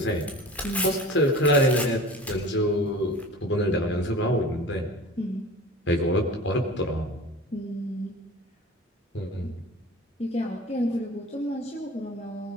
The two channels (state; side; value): normal; both; correlation 0.38